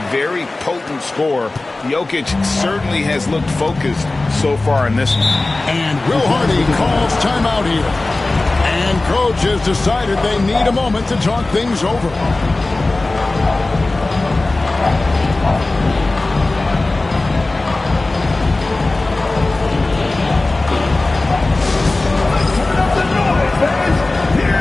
very potent scorer, Jokic certainly has looked focused so far in this one. And Will Hardy calls timeout here. And coach has decided they need a moment to talk things over.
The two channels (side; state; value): right; quieter; 3.1 dB